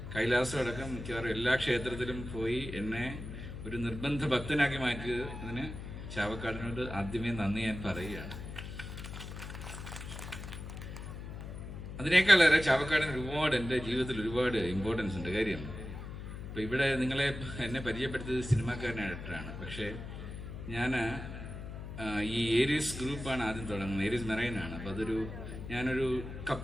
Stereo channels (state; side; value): noise; left; hum, 9 dB below the sound